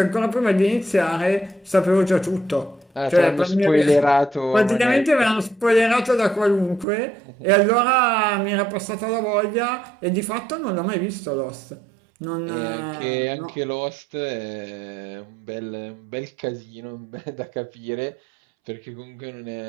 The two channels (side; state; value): left; drops out; at 6.9 s